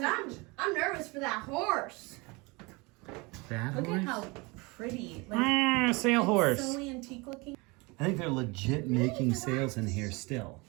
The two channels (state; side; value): quieter; left; 26.4 dB